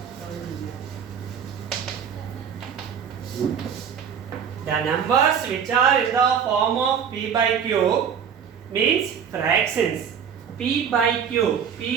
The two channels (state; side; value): quieter; left; 7.6 dB